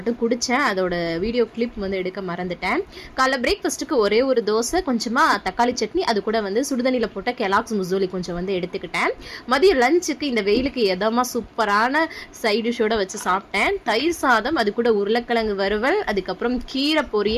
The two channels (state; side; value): identical; both; correlation 1.00